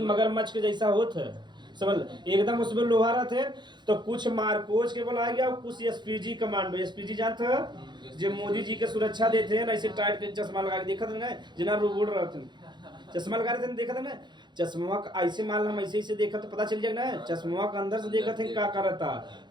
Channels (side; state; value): left; late; 0.21 ms